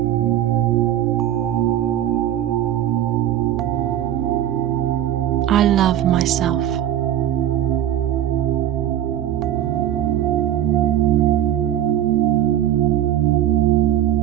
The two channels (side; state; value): left; quieter; 11.5 dB